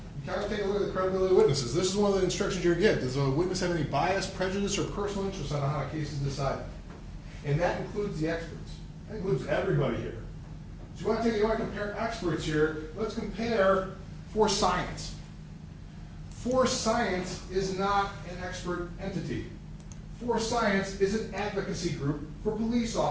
got to take a look at the credibility of witnesses. This is one of the instructions you get. Does a witness have any bias, prejudice, or personal interest on how a case is decided? And that includes the experts. That includes everybody here. So you want to compare experts here. Let's compare for science. For science is not an expert entity. For science is an advocacy group for police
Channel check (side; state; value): both; identical; correlation 1.00